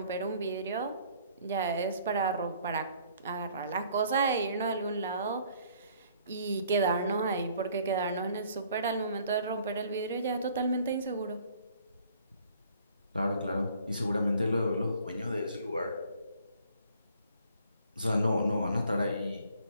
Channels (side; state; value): both; inverted; correlation -0.58